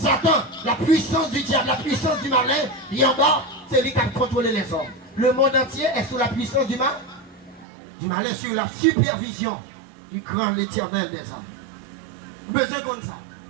la puissance du diable, la puissance du malin, il est en bas, c'est lui qui a contrôlé les hommes. Le monde entier est sous la puissance du malin, sur la supervision du grand l'Éternel des armées. Besoin comme ça.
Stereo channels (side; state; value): left; drops out; at 7.7 s